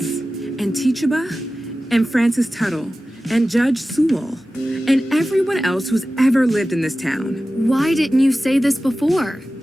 And Teachaba, and Francis Tuttle, and Judge Sewell, and everyone else who's ever lived in this town. Why didn't you say this before?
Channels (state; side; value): normal; both; correlation 0.95